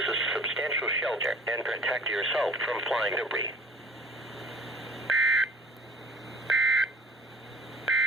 substantial shelter and protect yourself from flying debris.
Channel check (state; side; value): normal; both; correlation 0.49